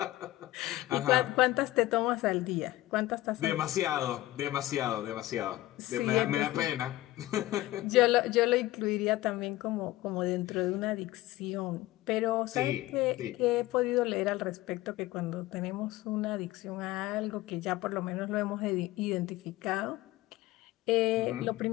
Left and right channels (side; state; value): right; quieter; 17.1 dB